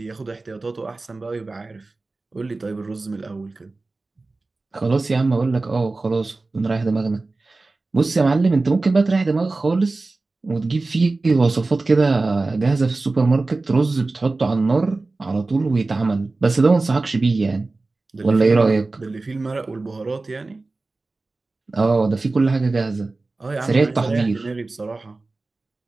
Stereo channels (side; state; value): left; quieter; 3.4 dB